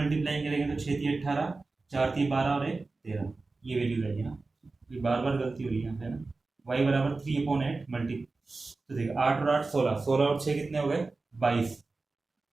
करेंगे तो 6 3 18, 4 3 12 और 1 13, ये वैल्यू रहेगी ना। ये बार बार गलती हुई यहाँ पे ना। y बराबर 3/8 मल्टी, तो देखिए 8 और 8 16, 16 और 6 कितने हो गए 22,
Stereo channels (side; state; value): left; quieter; 3.6 dB